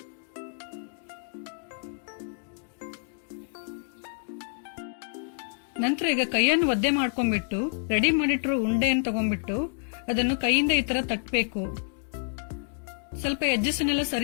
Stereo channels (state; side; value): silent; right; digital silence